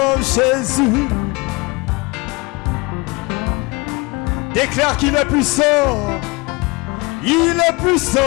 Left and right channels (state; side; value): quieter; right; 26.4 dB